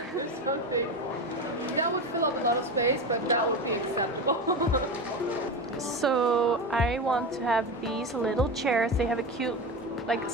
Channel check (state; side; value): normal; both; correlation 0.22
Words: There's something that would fill up a lot of space, but that would be acceptable. So I want to have these little chairs. They have a cute like